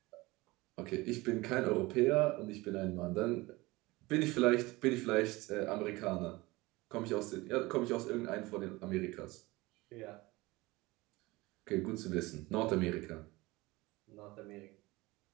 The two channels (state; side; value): quieter; left; 21.5 dB